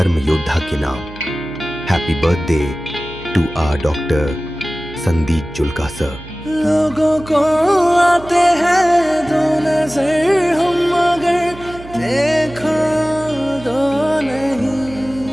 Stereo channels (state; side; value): noise; right; hum, 16 dB below the sound